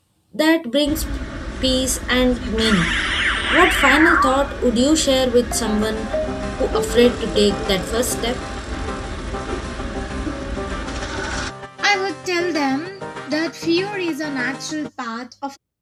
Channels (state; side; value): identical; both; correlation 1.00